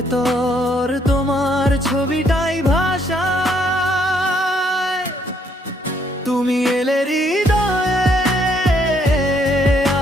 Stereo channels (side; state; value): both; normal; correlation 0.69